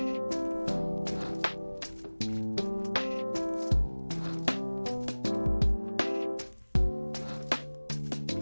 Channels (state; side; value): inverted; both; correlation -1.00